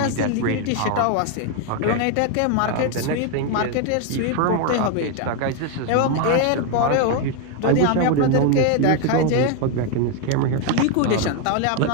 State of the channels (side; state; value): both; different; correlation 0.01